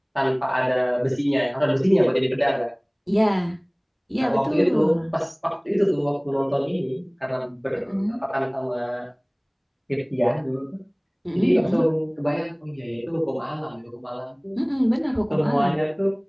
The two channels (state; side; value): identical; both; correlation 1.00